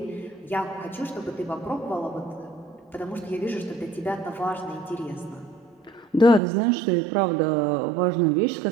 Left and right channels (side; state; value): left; drops out; at 6.4 s